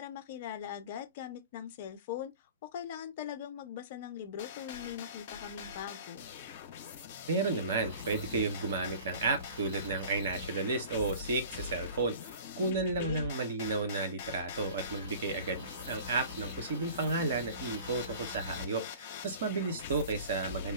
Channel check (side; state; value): both; inverted; correlation -0.44